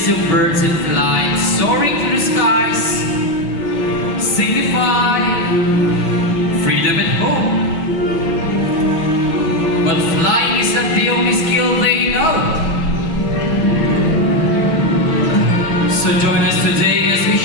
of birds in flight soaring through the skies signify freedom and hope. But flying is not the only skill they know. So join us today as we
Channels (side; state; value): right; late; 6.1 ms